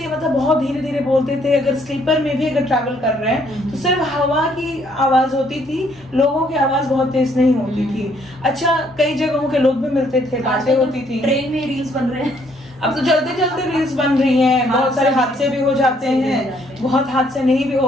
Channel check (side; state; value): both; normal; correlation 0.67